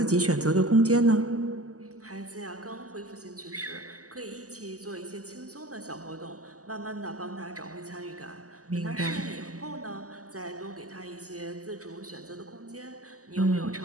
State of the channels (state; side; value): late; left; 0.66 ms